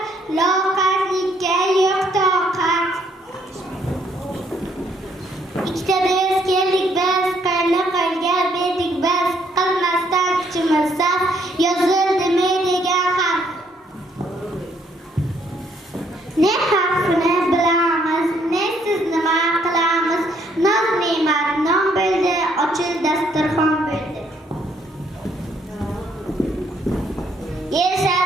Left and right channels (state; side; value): normal; both; correlation 0.69